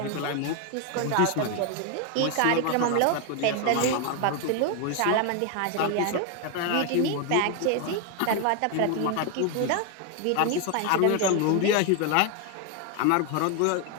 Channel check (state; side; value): different; both; correlation 0.01